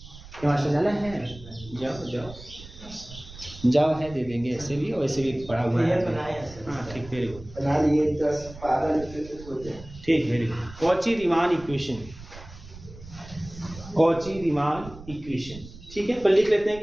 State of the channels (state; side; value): noise; right; rumble, 17 dB below the sound